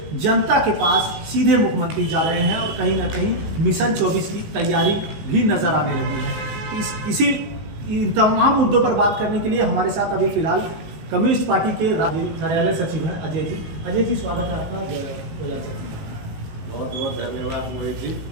जनता के पास सीधे मुख्यमंत्री जा रहे हैं और कहीं ना कहीं मिशन 24 की तैयारी भी नजर आने लगी है। इसी इन तमाम मुद्दों पर बात करने के लिए हमारे साथ अभी फिलहाल कम्युनिस्ट पार्टी के राज्य कार्यालय सचिव हैं अजय जी। अजय जी, स्वागत है आपका। बहुत बहुत धन्यवाद मोहित जी।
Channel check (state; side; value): late; left; 19 ms